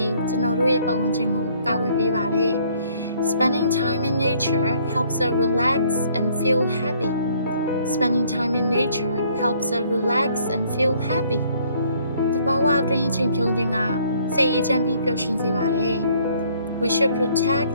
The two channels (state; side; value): inverted; both; correlation -0.63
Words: ီးကျွန်တော်တို့ရဲ့ပတ်ဝန်းကျင်ကိုကာကွယ်ပေးပါတယ် Spending time in nature helps us relax and feel happy. Spending time in nature helps us relax and feel happy. တဘာဝအတွင်းချိန်ဖြုံးခြင်းကစိတ်အေးချမ်းပြီးပျော်ရွှင်စေပါတယ် We should protect